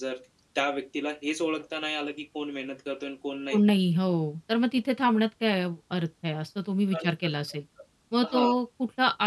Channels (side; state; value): both; identical; correlation 1.00